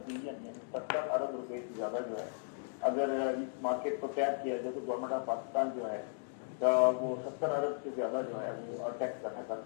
بلین یعنی 70 ارب روپے سے زیادہ جو ہے اگر اس مارکیٹ کو ٹیپ کیا جائے تو گورنمنٹ آف پاکستان جو ہے وہ 70 ارب سے زیادہ جو ہے وہ ٹیکس اکٹھا کر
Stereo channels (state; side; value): silent; right; digital silence